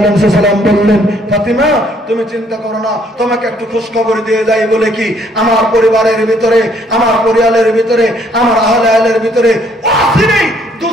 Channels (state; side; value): normal; both; correlation 0.65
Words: সাল্লাম বললেন, ফাতেমা তুমি চিন্তা করো না, তোমাকে একটু খোঁজ খবর দিয়ে যাই বলে কি আমার পরিবারের ভিতরে, আমার পরিবারের ভিতরে, আমার আহলের ভিতরে অচিরেই